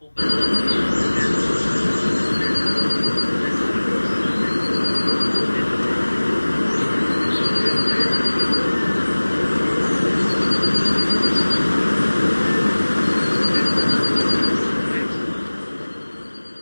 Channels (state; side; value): inverted; both; correlation -1.00